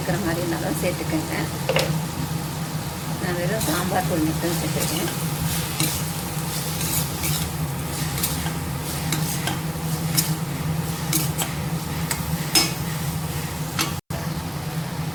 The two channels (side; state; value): both; identical; correlation 1.00